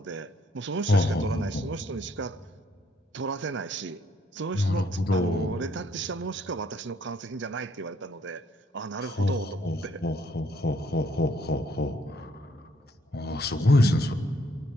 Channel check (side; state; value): both; normal; correlation 0.67